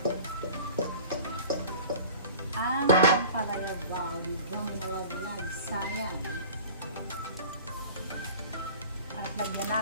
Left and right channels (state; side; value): inverted; both; correlation -0.42